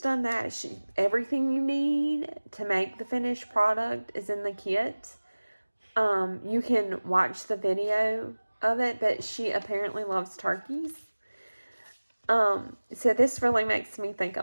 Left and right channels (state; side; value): inverted; both; correlation -1.00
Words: that. Everything you need to make the finished product is in the kit. You can watch the video of it, but she apparently loves turkeys. So this really makes me think